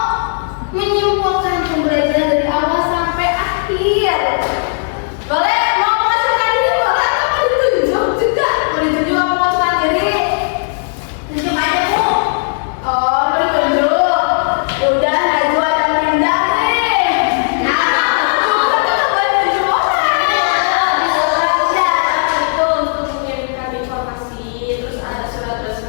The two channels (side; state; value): right; silent; digital silence